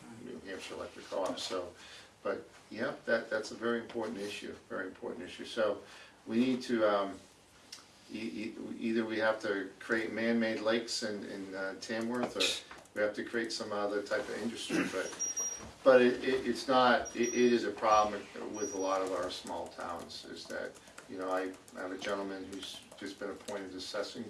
New Hampshire Electric Co-op. So, but yeah, that's a very important issue. Very important issue. So we need to either we have to create man-made lakes in Tamworth, or we have to create some other type of industry. But it's not. It is a problem with a lot of our small towns. Is that, you know, I have a gentleman who's just been appointed to assessing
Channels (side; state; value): both; identical; correlation 1.00